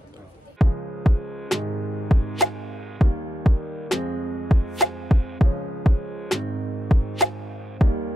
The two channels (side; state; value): both; normal; correlation 0.86